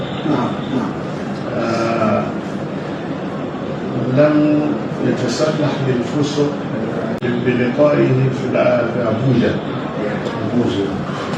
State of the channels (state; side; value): identical; both; correlation 1.00